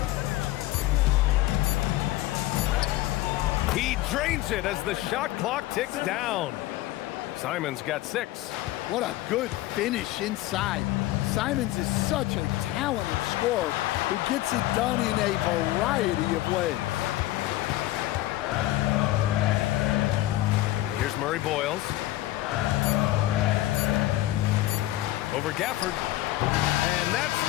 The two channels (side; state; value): right; quieter; 16.3 dB